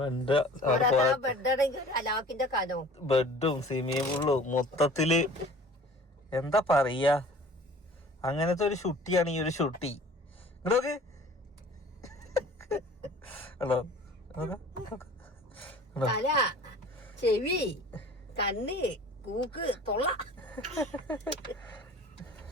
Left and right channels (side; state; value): both; normal; correlation 0.46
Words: ബെഡാണെങ്കിൽ അലാക്കിന്റെ കനോ ബെഡും സ്വിമ്മിംഗ് പൂളും മൊത്തത്തില് എന്താ പറയാ. അങ്ങനത്തെ ഒരു ഷുട്ടിയാണ് ഈ ഒരു ഷുട്ടി. ഇങ്ങോട്ട് ഹലോ. തല, ചെവി, കണ്ണ്, കൂക്ക്, തൊള്ള.